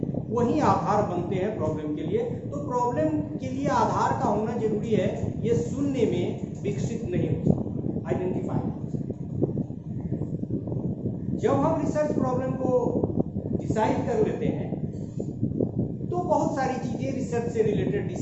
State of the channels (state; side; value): identical; both; correlation 1.00